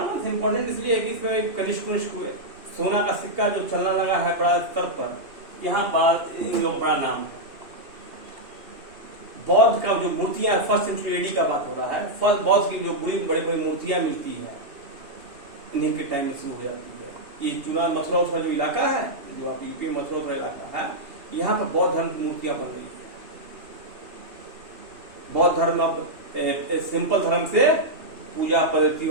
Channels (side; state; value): left; late; 2.8 ms